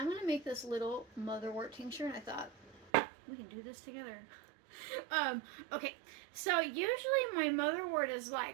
going to make this little motherwort tincture, and I thought we can do this together. Okay, so usually my motherwort is like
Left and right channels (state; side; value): drops out; left; at 2.9 s